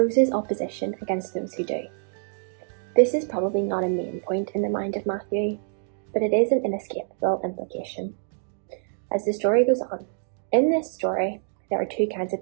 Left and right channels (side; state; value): left; silent; 61 dB below the other